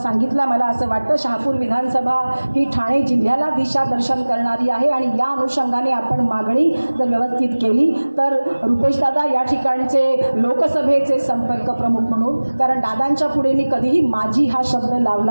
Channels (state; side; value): inverted; both; correlation -1.00